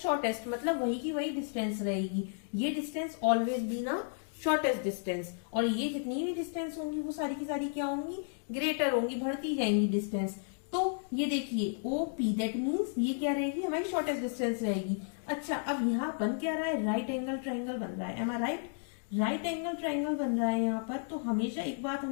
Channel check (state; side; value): silent; right; digital silence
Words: मतलब वही की वही डिस्टेंस रहेगी। ये डिस्टेंस ऑलवेज बी ना शॉर्टेस्ट डिस्टेंस, और ये जितनी भी डिस्टेंस होंगी वो सारी की सारी क्या होंगी, ग्रेटर होंगी, बढ़ती जाएंगी डिस्टेंस। तो ये देखिए ओ पी, दैट मीन्स ये क्या रहेगी, हमारी शॉर्टेस्ट डिस्टेंस रहेगी। अच्छा, अब यहाँ बन क्या रहा है, राइट एंगल ट्राइंगल बन रहा है। एम आई राइट? राइट एंगल ट्राइंगल बन रहा है यहाँ पर। तो हमेशा एक बात